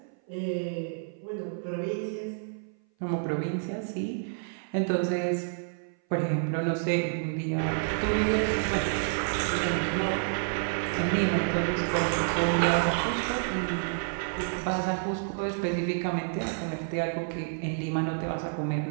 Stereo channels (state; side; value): silent; left; 56 dB below the other